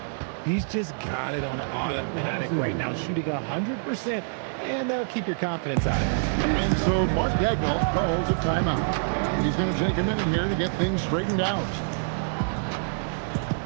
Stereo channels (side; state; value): left; silent; digital silence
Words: He's just got it on automatic right now, shooting 100%, and that'll keep your confidence out of it. And so Mark Daigneault calls a timeout. He's going to take a minute here to get things straightened out.